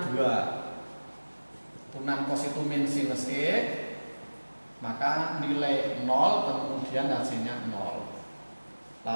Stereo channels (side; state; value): both; inverted; correlation -1.00